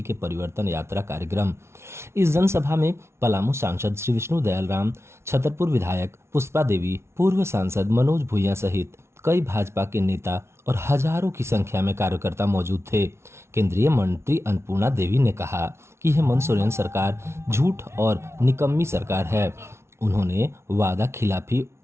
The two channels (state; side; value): late; left; 0.13 ms